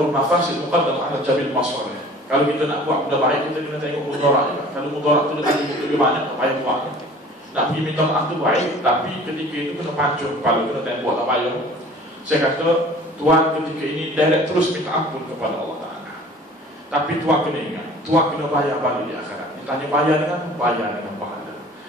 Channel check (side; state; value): both; normal; correlation 0.47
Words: mafasid muqaddam ala jabil masalih. Kalau kita nak buat benda baik, kita kena tengok mudarat juga. Kalau mudarat tu lebih banyak, tak payah buat. Nak pergi minta maaf tu baik, tapi ketika itu kena pancung kepala, kena tembok, tak payah. Saya kata, Tuan ketika ini direct terus minta ampun kepada Allah Ta'ala. Tapi Tuan kena ingat, Tuan kena bayar balik di akhirat. tanya bayar dengan pahala.